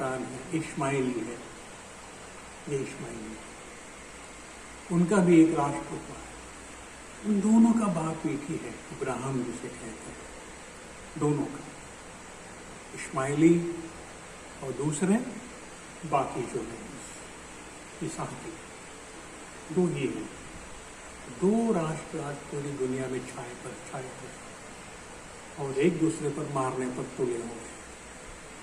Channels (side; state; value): both; identical; correlation 1.00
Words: है, इस्माइली है, ये इस्माइली है। उनका भी एक राष्ट्र हुआ है। उन दोनों का बाप एक ही है, इब्राहिम जिसे कहते हैं, दोनों का, इस्माइली और दूसरे बाकी जो है इसहाकी, दो ही हैं। दो राष्ट्र आज पूरी दुनिया में छाए पर और एक दूसरे पर मारने पर तुले हुए हैं।